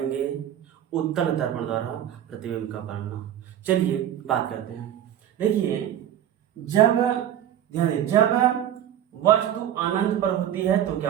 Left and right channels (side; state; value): left; quieter; 10.8 dB